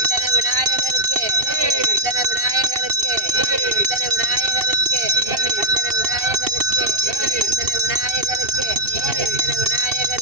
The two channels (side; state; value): left; late; 2.7 ms